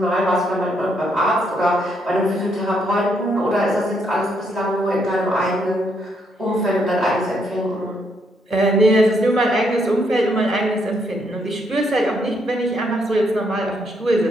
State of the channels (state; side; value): normal; both; correlation 0.74